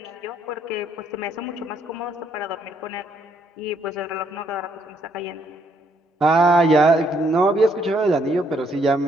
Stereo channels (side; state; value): both; normal; correlation 0.70